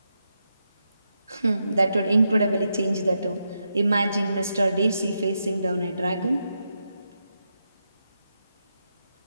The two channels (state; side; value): inverted; both; correlation -0.85